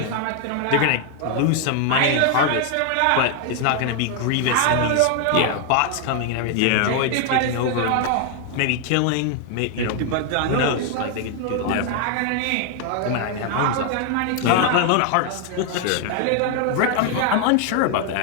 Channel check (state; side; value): different; both; correlation 0.00